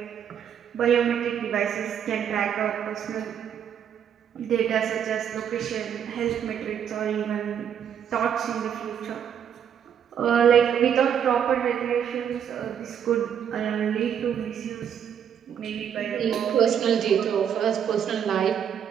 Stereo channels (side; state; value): left; quieter; 8.6 dB